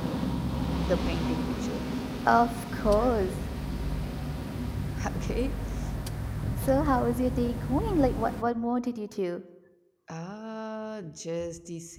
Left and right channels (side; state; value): both; identical; correlation 1.00